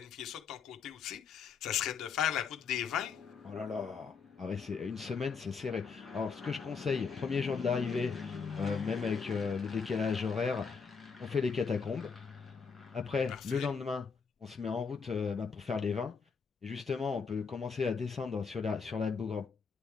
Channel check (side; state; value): right; quieter; 5.5 dB